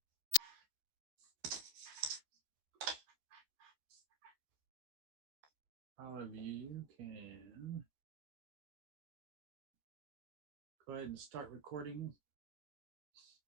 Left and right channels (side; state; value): left; late; 13 ms